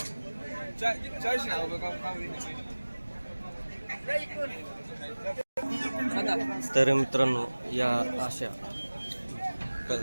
तर मित्रांनो या अशा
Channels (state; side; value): inverted; both; correlation -1.00